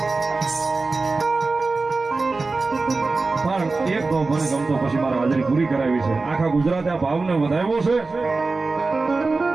પણ એક ભાવ મને ગમતો પછી મારા હાજરી પૂરી કરાવી છે. આખા ગુજરાતે આ ભાવને વધાવ્યો છે.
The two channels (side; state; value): left; quieter; 3.8 dB